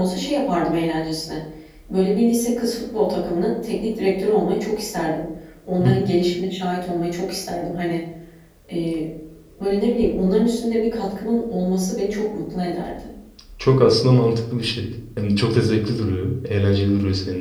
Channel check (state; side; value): identical; both; correlation 1.00